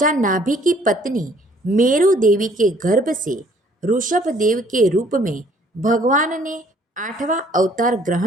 नाभि की पत्नी मेरु देवी के गर्भ से ऋषभ देव के रूप में भगवान ने आठवां अवतार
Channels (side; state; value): both; normal; correlation 0.60